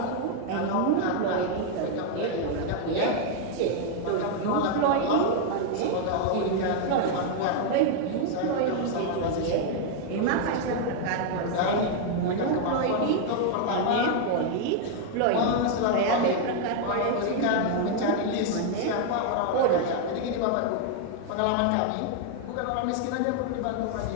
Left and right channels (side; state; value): both; different; correlation 0.00